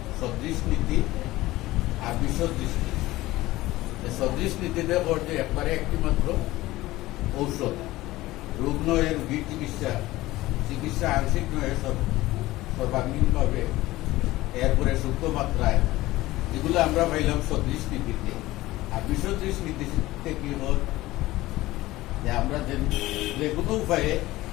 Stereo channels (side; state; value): right; quieter; 17.8 dB